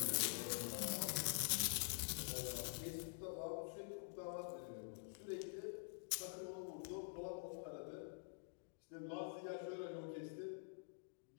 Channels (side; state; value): right; silent; digital silence